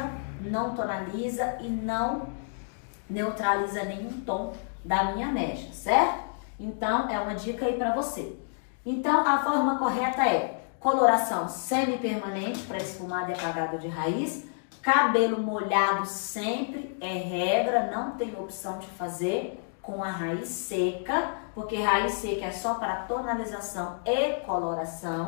não tonaliza e não neutraliza nenhum tom da minha mecha, certo? Então, é uma dica aí para você. Então, a forma correta é coloração semi-permanente para esfumado e apagado de raiz, cabelo molhado sempre é regra, não tem opção de fazer com a raiz seca, porque raiz seca é só para tonalização e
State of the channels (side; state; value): right; silent; digital silence